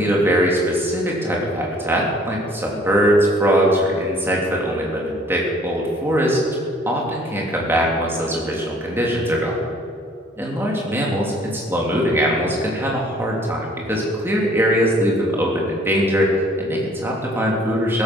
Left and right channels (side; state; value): both; normal; correlation 0.57